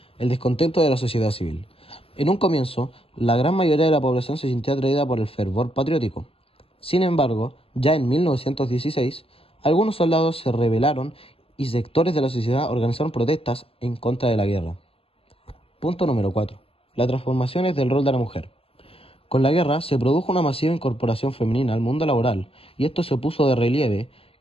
El descontento de la sociedad civil. En un comienzo, la gran mayoría de la población se sintió atraída por el fervor patriótico. Sin embargo, ya en 1916, algunos soldados se rebelaron y sectores de la sociedad organizaron protestas en contra de la guerra. Punto número 4. Las transformaciones del rol de la mujer. Con la guerra se produjo una masiva incorporación femenina al mundo laboral, y esto se puso de relieve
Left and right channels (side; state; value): right; late; 0.27 ms